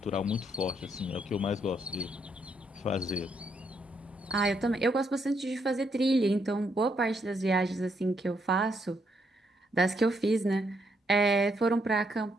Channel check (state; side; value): normal; both; correlation 0.76